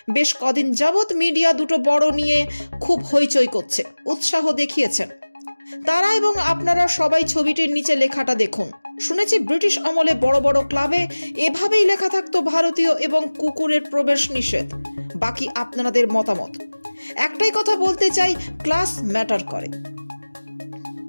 বেশ কদিন যাবৎ মিডিয়া দুটো বড় নিয়ে খুব হইচই করছে, উৎসাহ দেখিয়েছেন তারা এবং আপনারা সবাই। ছবিটির নিচে লেখাটা দেখুন। শুনেছি ব্রিটিশ আমলে বড় বড় ক্লাবে এভাবেই লেখা থাকতো ভারতীয় এবং কুকুরের প্রবেশ নিষেধ। বাকি আপনাদের মতামত। একটাই কথা বলতে চাই, ক্লাস ম্যাটার করে।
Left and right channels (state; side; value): inverted; both; correlation -1.00